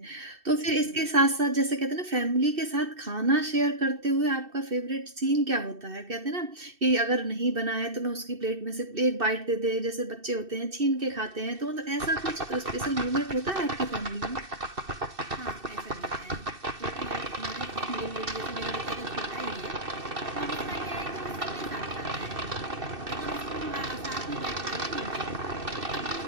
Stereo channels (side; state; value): left; late; 2.7 ms